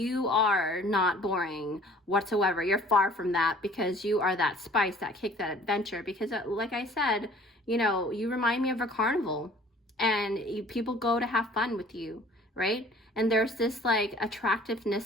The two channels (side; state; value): both; normal; correlation 0.51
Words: are not boring whatsoever. You're far from that, because you are that spice, that kick, that adventure. Because like I said, you know, you remind me of a carnival, and people go to have fun with you, right? And there's this like